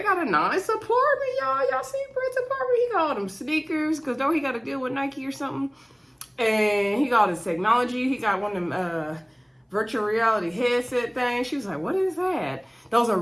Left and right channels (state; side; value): identical; both; correlation 1.00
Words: got a nice apartment, y'all. Y'all see Brett's apartment? He got all them sneakers, because don't he got to deal with Nike or something? And he got his technology. He got one of them virtual reality headset things. She was like, what is that? Those are